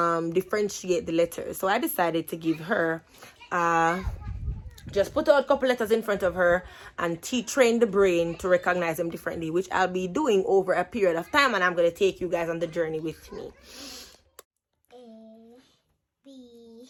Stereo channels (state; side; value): identical; both; correlation 1.00